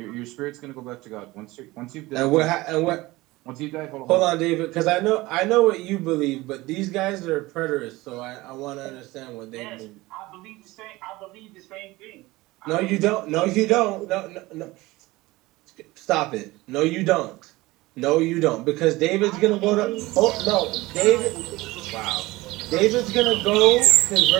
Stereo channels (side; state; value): left; quieter; 20.0 dB